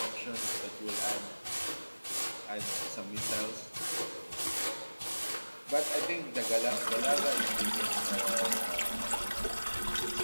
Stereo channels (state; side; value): inverted; both; correlation -1.00